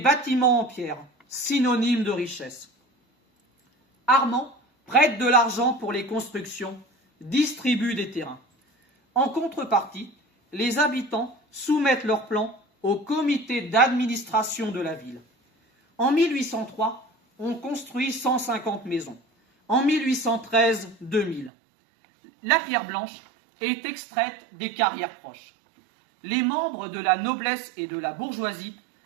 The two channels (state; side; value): drops out; left; at 21.5 s